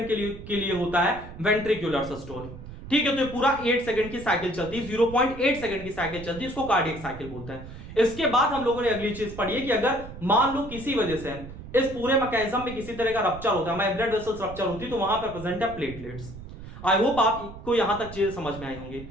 के लिए होता है वेंट्रिकुलर सिस्टोल। ठीक है, तो ये पूरा 8 सेकंड की साइकिल चलती है, 0.8 सेकंड की साइकिल चलती है, इसको कार्डियक साइकिल बोलते हैं। इसके बाद हम लोगों ने अगली चीज पढ़ी है कि अगर मान लो किसी वजह से इस पूरे मैकेनिज्म में किसी तरह का रप्चर होता है, ब्लड वेसल्स रप्चर होती है, तो वहां पर प्रेजेंट है प्लेटलेट्स। आई होप आपको यहां तक चीजें समझ में आई होंगी।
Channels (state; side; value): noise; right; rumble, 13 dB below the sound